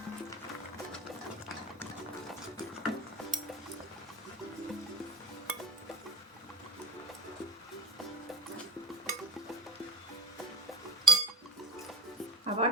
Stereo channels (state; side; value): normal; both; correlation 0.38